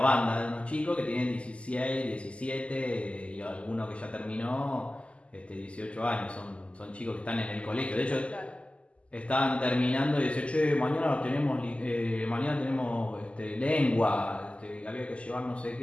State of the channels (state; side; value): late; right; 0.057 ms